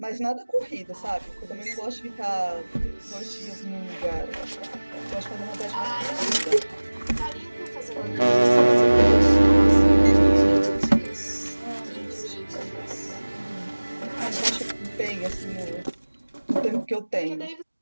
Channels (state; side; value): inverted; both; correlation -1.00